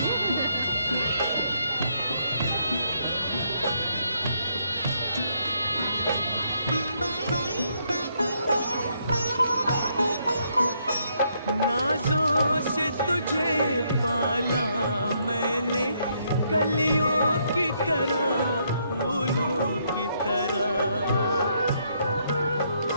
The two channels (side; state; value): both; inverted; correlation -0.73